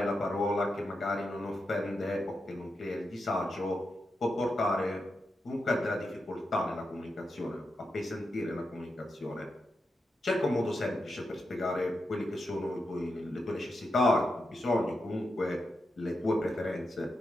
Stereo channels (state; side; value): normal; both; correlation 0.87